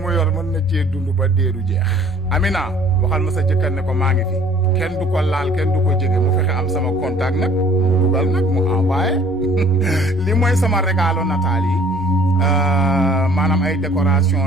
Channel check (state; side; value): normal; both; correlation 0.54